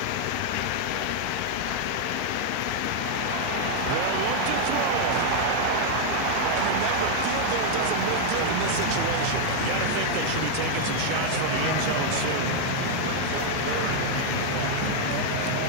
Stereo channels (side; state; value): both; different; correlation 0.00